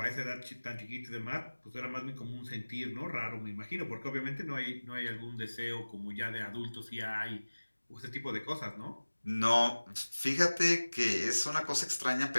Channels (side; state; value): both; inverted; correlation -1.00